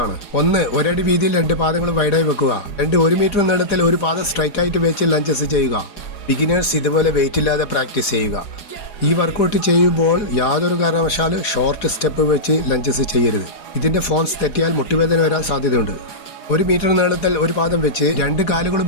1. ഒരടി വീതിയിൽ 2 പാദങ്ങൾ വൈഡായി വെക്കുക. 2. 1 മീറ്റർ നീളത്തിൽ ഒരു പാദം സ്ട്രൈറ്റ് ആയിട്ട് വെച്ച് ലഞ്ചസ് ചെയ്യുക. ബിഗിനേഴ്സ് ഇതുപോലെ വെയിറ്റ് ഇല്ലാതെ പ്രാക്ടീസ് ചെയ്യുക. ഈ വർക്കൗട്ട് ചെയ്യുമ്പോൾ യാതൊരു കാരണവശാലും ഷോർട്ട് സ്റ്റെപ്പ് വെച്ച് ലഞ്ചസ് ചെയ്യരുത്. ഇതിന്റെ ഫോംസ് തെറ്റിയാൽ മുട്ടുവേദന വരാൻ സാധ്യതയുണ്ട്. 1 മീറ്റർ നീളത്തിൽ ഒരു പാദം വെച്ച് 2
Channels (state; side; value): late; right; 4.9 ms